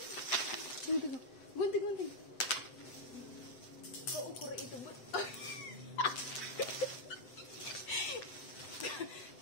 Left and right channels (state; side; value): late; right; 7.8 ms